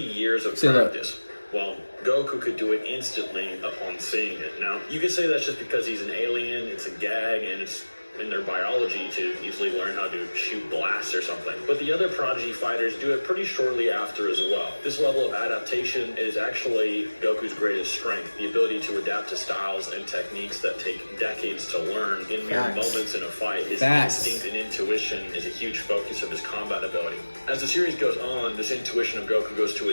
of practice, well, Goku could do it instantly upon seeing it. Now, you could say that's just because he's an alien, it's a gag, and it's in their biology to easily learn how to shoot blasts or something. But the other prodigy fighters do it pretty shortly after as well. This level of adaptation is actually Goku's greatest strength, the ability to adapt to styles and techniques that take decades to learn in mere moments in a fight. His instinct and intuition is a huge focus of his combat ability. As the series goes on, this intuition of Goku goes to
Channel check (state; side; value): inverted; both; correlation -1.00